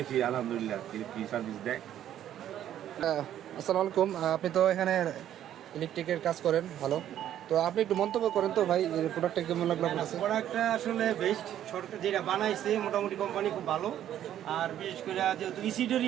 আলহামদুলিল্লাহ কি সার্ভিস দেয়। আসসালামু আলাইকুম, আপনি তো এখানে ইলেকট্রিকের কাজ করেন, ভালো। তো আপনি একটু মন্তব্য করেন তো ভাই, প্রোডাক্টটা কেমন লাগলো আপনার কাছে? প্রোডাক্টটা আসলে বেস্ট। সরকার যেটা বানাইছে মোটামুটি কোম্পানি খুব ভালো। আর বিশেষ করে যেহেতু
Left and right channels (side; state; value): left; quieter; 11.2 dB